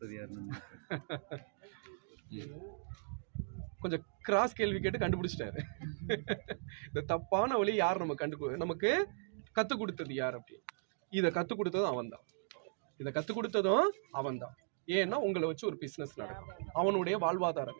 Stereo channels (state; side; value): silent; left; digital silence